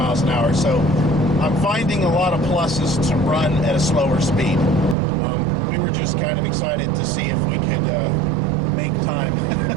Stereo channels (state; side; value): drops out; left; at 5.0 s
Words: an hour. So I'm finding a lot of pluses to run at a slower speed. We were just kind of excited to see if we could make time. I